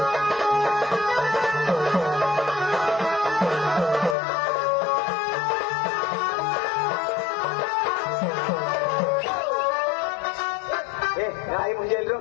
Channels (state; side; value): drops out; right; at 4.2 s